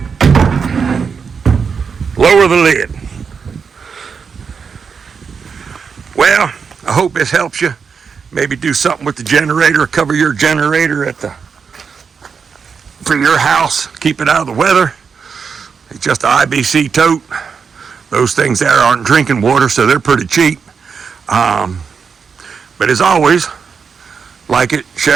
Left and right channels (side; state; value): left; quieter; 6.0 dB